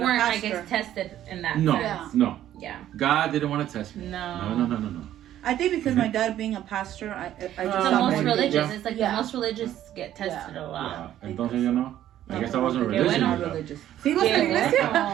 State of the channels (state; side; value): quieter; left; 12.1 dB